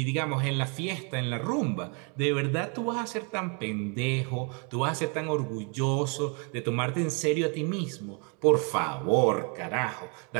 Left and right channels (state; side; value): quieter; left; 34.9 dB